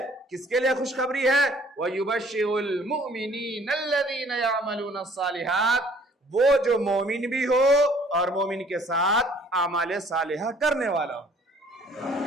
کس کے لیے خوشخبری ہے؟ وَيُبَشِّرُ الْمُؤْمِنِينَ الَّذِينَ يَعْمَلُونَ الصَّالِحَاتِ، وہ جو مومن بھی ہو اور مومن کے ساتھ اعمال صالحہ کرنے والا ہو،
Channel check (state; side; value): normal; both; correlation 0.57